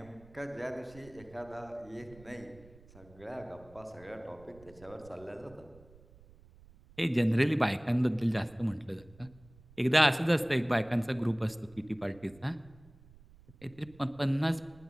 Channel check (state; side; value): noise; right; rumble, 24 dB below the sound